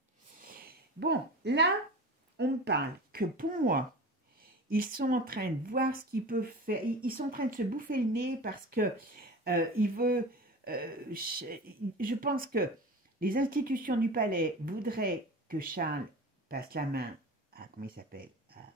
Bon, là, on me parle que pour moi, ils sont en train de voir ce qu'ils peuvent faire. Ils sont en train de se bouffer le nez parce que je pense que les institutions du palais voudraient que Charles passe la main à, comment il s'appelle, à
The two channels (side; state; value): both; normal; correlation 0.33